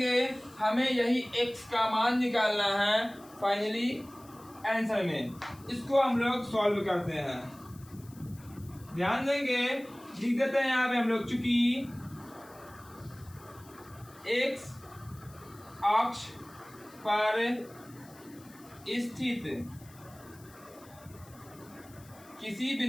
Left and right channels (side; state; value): left; noise; hiss, 24 dB below the sound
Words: हमें यही x का मान निकालना है फाइनली आंसर में। इसको हम लोग सॉल्व करते हैं। ध्यान देंगे लिख देते हैं यहाँ पे हम लोग, चूंकि x अक्ष पर स्थित किसी